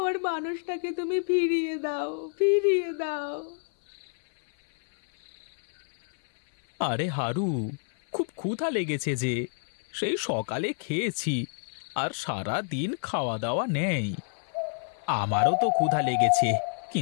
মানুষটাকে তুমি ফিরিয়ে দাও, ফিরিয়ে দাও। আরে হারু, খুব ক্ষুধা লেগেছে যে, সেই সকালে খেয়েছি আর সারা দিন খাওয়া দাওয়া নেই। আমারও তো ক্ষুধা লেগেছে,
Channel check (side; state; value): right; silent; 59 dB below the other